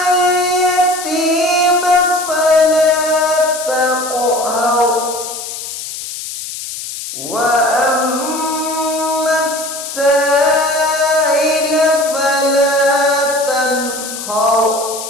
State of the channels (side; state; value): left; noise; hiss, 8 dB below the sound